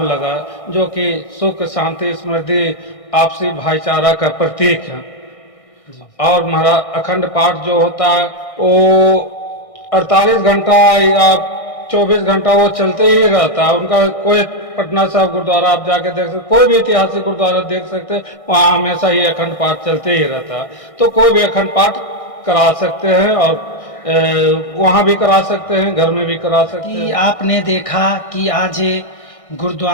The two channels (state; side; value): late; right; 1.6 ms